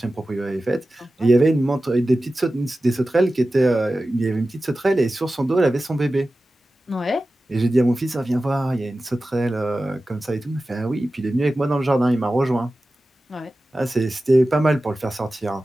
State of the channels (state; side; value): normal; both; correlation 0.95